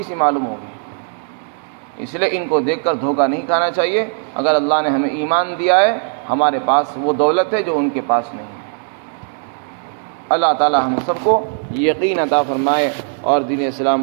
سی معلوم ہوگی۔ اس لیے ان کو دیکھ کر دھوکہ نہیں کھانا چاہیے۔ اگر اللہ نے ہمیں ایمان دیا ہے، ہمارے پاس وہ دولت ہے جو ان کے پاس نہیں ہے۔ اللہ تعالی ہم سب کو یقین عطا فرمائے اور دین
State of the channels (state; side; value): silent; left; digital silence